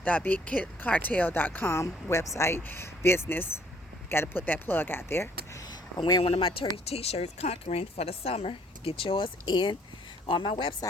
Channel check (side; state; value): both; normal; correlation 0.62